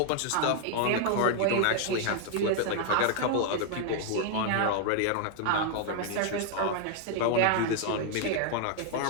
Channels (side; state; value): both; different; correlation 0.00